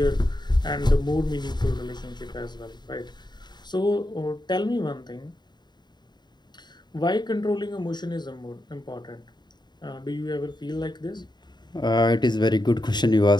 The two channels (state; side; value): late; right; 0.21 ms